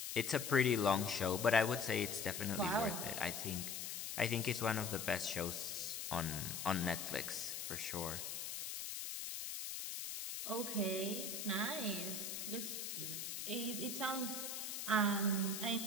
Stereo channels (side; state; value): left; noise; hiss, 5 dB below the sound